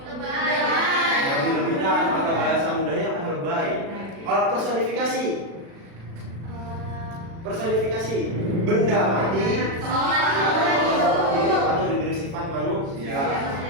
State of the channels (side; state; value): left; late; 36 ms